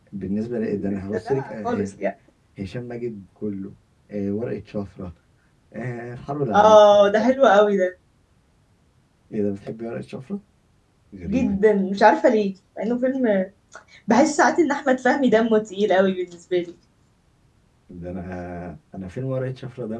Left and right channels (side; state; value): both; identical; correlation 1.00